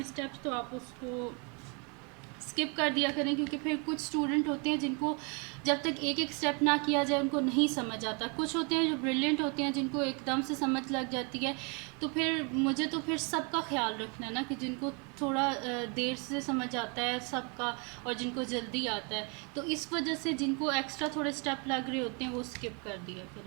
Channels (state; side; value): quieter; left; 33.9 dB